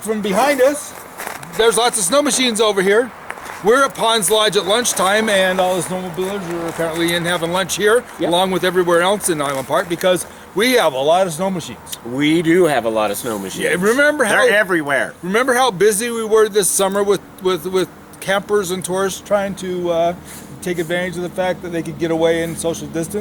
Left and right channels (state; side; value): identical; both; correlation 1.00